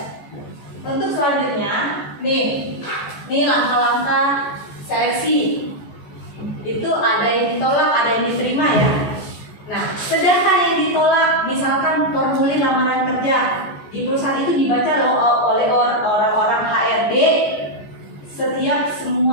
Untuk selanjutnya, nih langkah-langkah seleksi. Itu ada yang ditolak, ada yang diterima ya. Nah, sedangkan yang ditolak, misalkan formulir lamaran kerja di perusahaan itu dibaca oleh orang-orang HRD setiap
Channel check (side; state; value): right; late; 14 ms